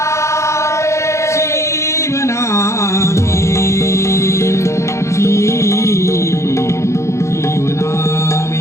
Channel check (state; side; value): late; right; 0.14 ms